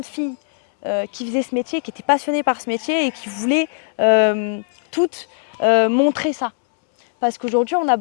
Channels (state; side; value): silent; right; 66 dB below the other